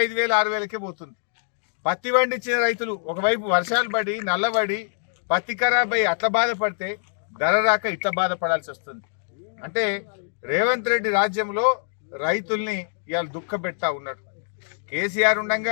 5,000 6,000కే పోతుంది. పత్తి పండించిన రైతులు ఒకవైపు వర్షాలు పడి నల్లబడి పత్తి ఖరాబ్ అయ్యి అట్లా బాధపడితే ధర రాక ఇట్లా బాధపడాల్సి వస్తుంది. అంటే రేవంత్ రెడ్డి రాజ్యంలో రైతుల్ని ఇవాళ దుఃఖపెడతా ఉన్నాడు. కేసీఆర్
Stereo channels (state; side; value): silent; right; digital silence